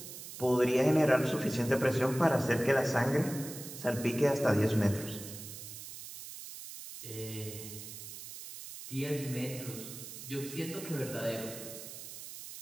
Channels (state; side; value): noise; right; hiss, 11 dB below the sound